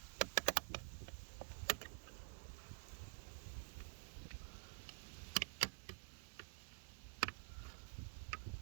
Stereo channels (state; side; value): quieter; left; 38.8 dB